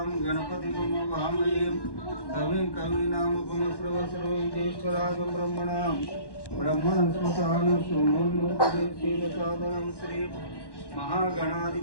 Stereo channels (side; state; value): right; late; 1.1 ms